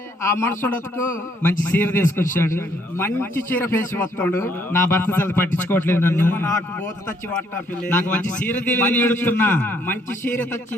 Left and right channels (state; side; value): normal; both; correlation 0.68